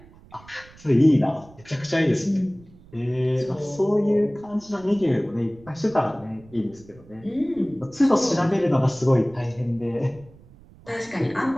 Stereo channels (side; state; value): right; noise; rumble, 24 dB below the sound